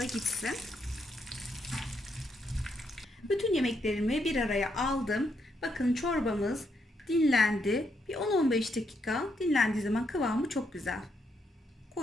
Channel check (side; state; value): both; normal; correlation 0.78